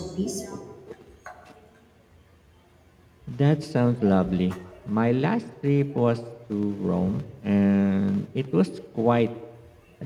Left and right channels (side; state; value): both; identical; correlation 1.00